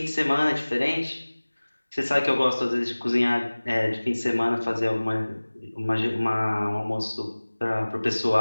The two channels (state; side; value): inverted; both; correlation -1.00